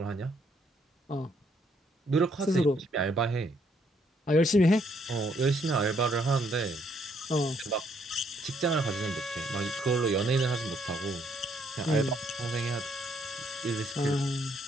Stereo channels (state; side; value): normal; both; correlation 0.70